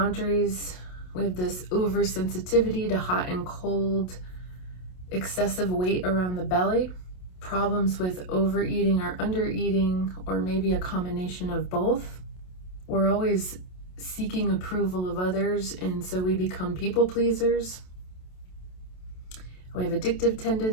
We have this oversensitivity to hot and cold, excessive weight around the belly, problems with overeating or undereating, or maybe a combination of both. We're always seeking approval of others, and so we become people pleasers. We have addictive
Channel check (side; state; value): right; late; 27 ms